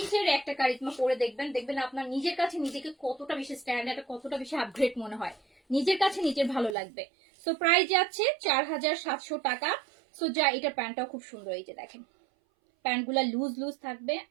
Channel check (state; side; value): drops out; left; at 6.8 s